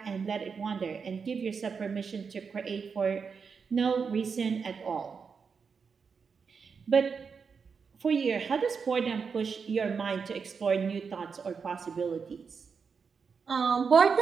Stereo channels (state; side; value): quieter; left; 5.7 dB